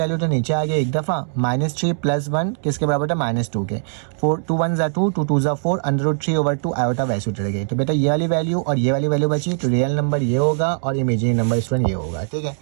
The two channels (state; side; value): silent; left; digital silence